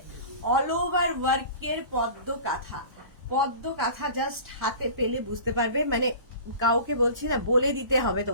অল ওভার ওয়ার্কের পদ্ম কাঁথা, পদ্ম কাঁথা জাস্ট হাতে পেলে বুঝতে পারবে, মানে কাউকে বলছি না, বলে দিতে হবে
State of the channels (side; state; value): left; late; 1.1 ms